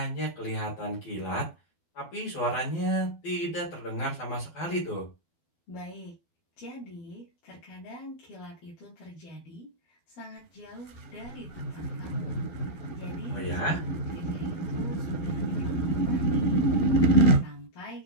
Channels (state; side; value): late; right; 12 ms